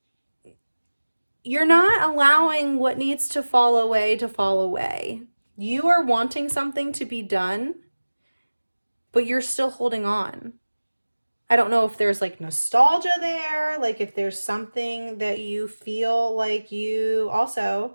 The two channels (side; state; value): both; inverted; correlation -1.00